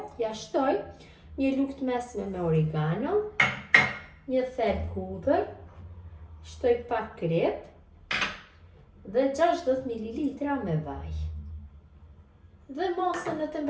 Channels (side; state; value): both; identical; correlation 1.00